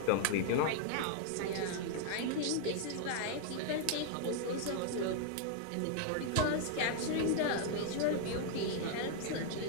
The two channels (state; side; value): different; both; correlation 0.00